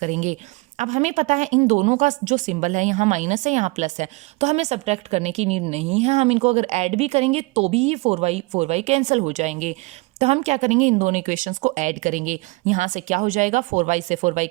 अब हमें पता है इन दोनों का जो सिंबल है, यहाँ माइनस है यहाँ प्लस है, तो हमें सब्ट्रैक्ट करने की नीड नहीं है। हम इनको अगर ऐड भी करेंगे तो भी ये 4y कैंसिल हो जाएंगे। तो हम क्या करेंगे, इन दोनों इक्वेशंस को ऐड करेंगे। यहाँ से क्या हो जाएगा, 4y से 4y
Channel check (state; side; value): quieter; left; 25.6 dB